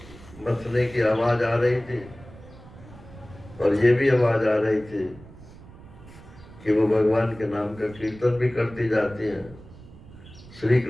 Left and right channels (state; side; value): noise; right; rumble, 19 dB below the sound